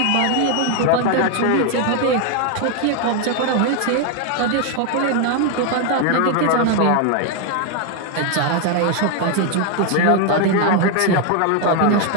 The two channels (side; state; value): both; different; correlation 0.01